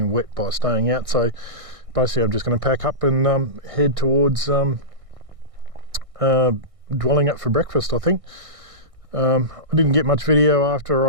wet by staying out. So basically I'm just going to pack up and head towards dwelling up for breakfast, I think. I didn't get much video after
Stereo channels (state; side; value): late; left; 1.6 ms